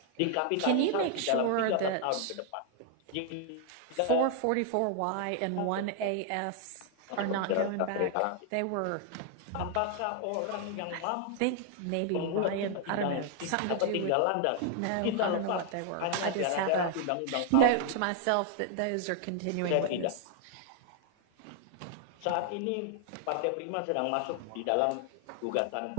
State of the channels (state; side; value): different; both; correlation 0.00